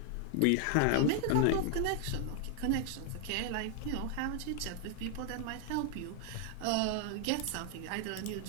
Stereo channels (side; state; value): both; different; correlation 0.00